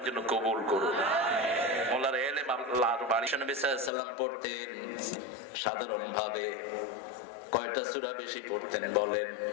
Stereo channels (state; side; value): drops out; right; at 3.9 s